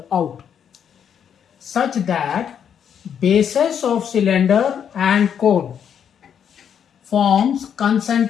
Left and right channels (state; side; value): quieter; right; 8.3 dB